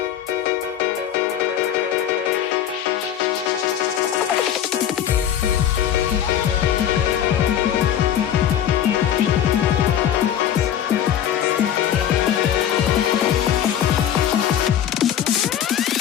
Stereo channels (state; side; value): quieter; right; 10.1 dB